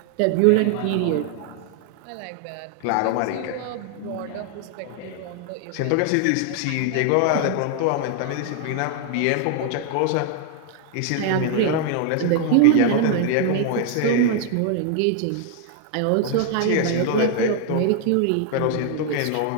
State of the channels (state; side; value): different; both; correlation 0.00